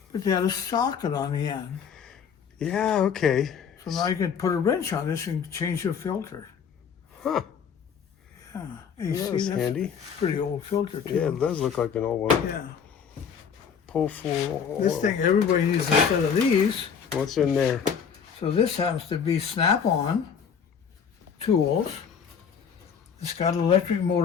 but they had a socket on the end. Yeah, okay. So now you can put a wrench on this and change your filter. Huh. Yeah. You see, That's handy. Pretty old filter, too. Yeah, it does look like an old one. Yeah. Pull full oil. This thing, everybody needs a set of these. What's in there? So this happens to be snap-on tools. It's got an electric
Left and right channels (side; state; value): right; quieter; 7.1 dB